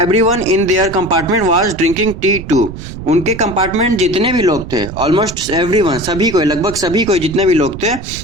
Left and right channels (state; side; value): noise; right; rumble, 11 dB below the sound